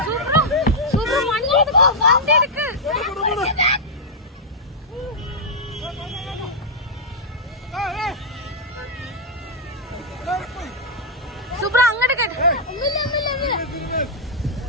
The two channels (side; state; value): both; normal; correlation -0.06